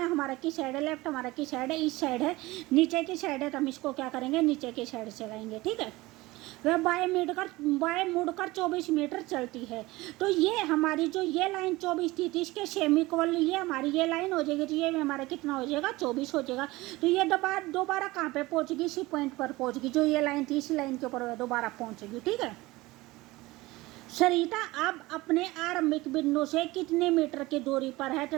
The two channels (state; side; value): quieter; left; 20.2 dB